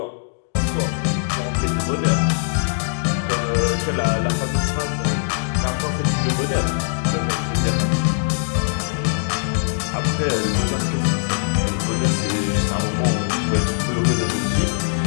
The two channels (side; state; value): right; silent; digital silence